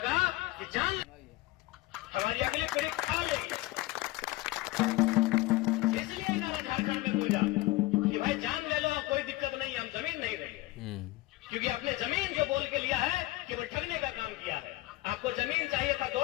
कि जान हमारी अगली पीढ़ी खा लेगी। इसलिए नारा झारखंड में गूंजा कि भाई जान ले लो, कोई दिक्कत नहीं, हम जमीन नहीं देंगे। क्योंकि आपने जमीन जो बोल के लिया है कि वो ठगने का काम किया है। आपको जमीन चाहिए था 2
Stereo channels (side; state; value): right; quieter; 19.0 dB